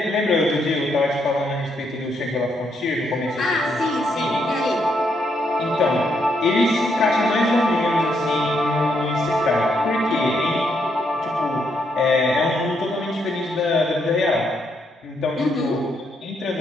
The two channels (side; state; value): both; normal; correlation 0.76